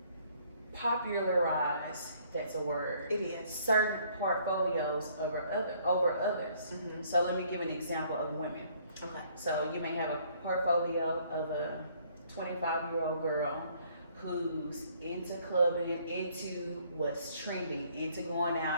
popularized, that's a word. It is. Certain portfolios over others. So let me give an example of women. Okay. So you may have a portfolio of a 25-year-old girl who's into clubbing, into what's trending, into going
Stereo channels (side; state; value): both; inverted; correlation -0.63